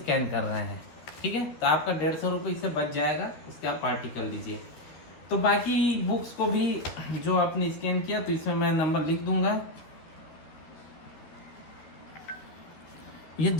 कर रहे हैं, ठीक है। तो आपका 150 रुपये इससे बच जाएगा, उसके आप पार्टी कर लीजिए। तो बाकी बुक्स को भी जो आपने स्कैन किया, तो इसमें मैं नंबर लिख दूंगा। ये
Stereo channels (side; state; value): right; late; 12 ms